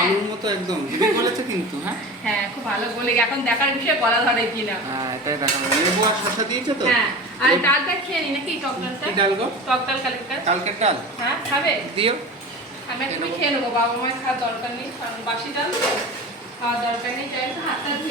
আলুর মতো একদম, দিদি বলেছে কিন্তু। হ্যাঁ হ্যাঁ খুব ভালো বলে, এখন দেখার বিষয় গলা ধরে কিনা। হ্যাঁ এটাই দেখা যাবে। লেবু আর শসা দিয়েছো তো? হ্যাঁ আর ডালটা খেয়ে নি নাকি, টক ডালটা? কি ডাল গো? টক ডাল কালকের। কালকের ডাল হ্যাঁ খাবে? দিও। আমি একটু খেয়ে নেবো, বাবা মায়ের খাওয়ার দরকার নেই, কারণ বাসি ডাল তো খাওয়ার দরকার নেই। যাই হোক হাতটা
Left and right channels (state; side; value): normal; both; correlation 0.32